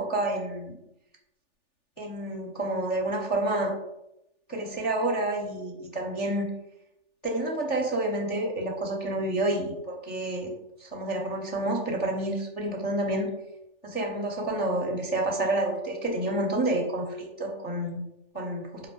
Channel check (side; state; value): right; late; 3.4 ms